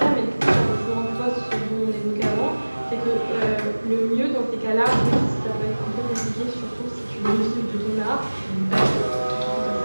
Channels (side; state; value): both; inverted; correlation -1.00